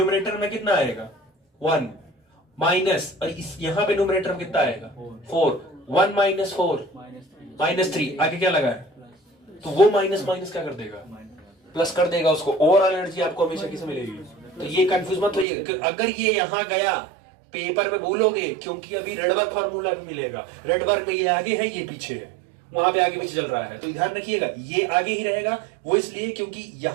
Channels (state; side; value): drops out; left; at 15.5 s